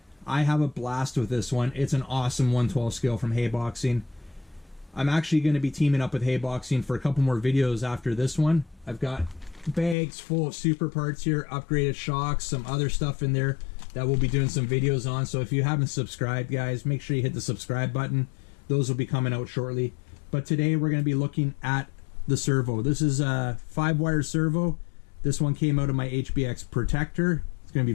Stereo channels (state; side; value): drops out; right; at 10.0 s